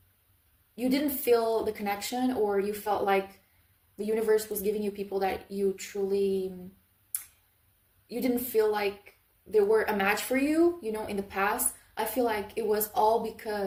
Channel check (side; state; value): both; identical; correlation 1.00